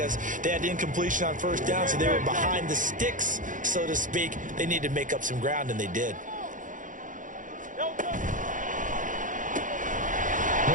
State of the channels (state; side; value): late; left; 0.38 ms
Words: they had incompletion on 1st down, so they were behind the sticks, so to speak. They needed to make up some ground, and they did.